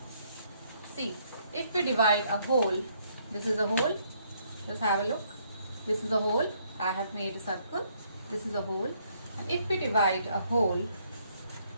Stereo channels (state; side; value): inverted; both; correlation -0.69